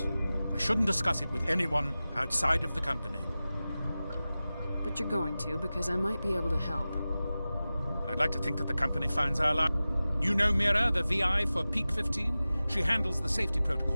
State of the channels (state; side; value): inverted; both; correlation -0.96